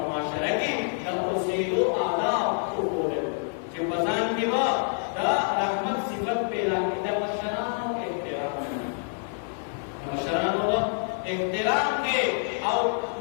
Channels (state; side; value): silent; right; 57 dB below the other